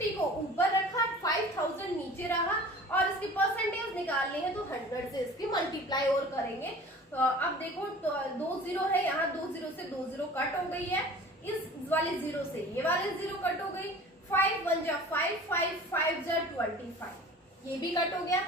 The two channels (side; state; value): both; normal; correlation 0.43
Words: को ऊपर रखा, 5000 नीचे रहा, और इसकी परसेंटेज निकालनी है तो 100 से इसकी मल्टीप्लाई और करेंगे। अब देखो 2 0 है यहाँ, 2 0 से 2 0 कट हो गई है, इस वाले जीरो से ये वाले जीरो कट हो गई, 5 1 जा 5, 5 5 जा 25, ये भी कट हो गया।